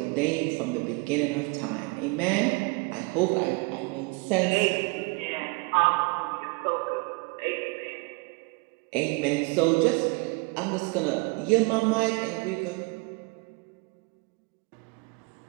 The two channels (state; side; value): quieter; left; 29.1 dB